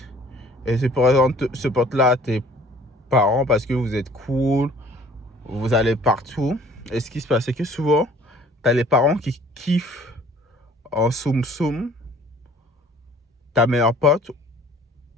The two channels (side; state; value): both; normal; correlation 0.53